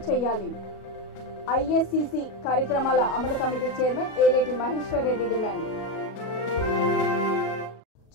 చేయాలి, ఐఎస్సిసి కార్యక్రమాల అమలు committee chairman Eleti Maheshwar Reddy demand.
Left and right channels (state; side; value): late; right; 37 ms